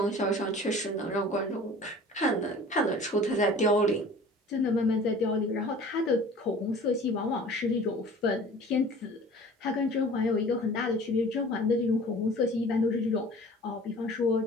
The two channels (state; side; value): normal; both; correlation 0.45